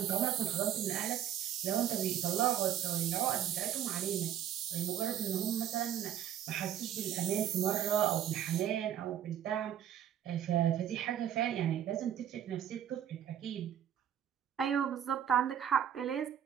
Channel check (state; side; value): quieter; left; 10.2 dB